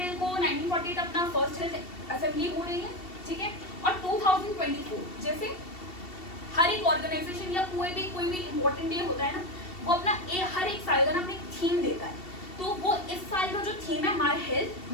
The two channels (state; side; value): late; right; 2.7 ms